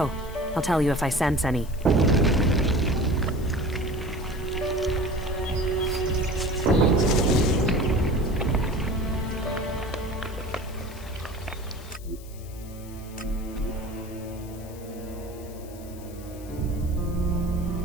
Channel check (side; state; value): left; noise; hiss, 21 dB below the sound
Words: I'll tell you if I sense any.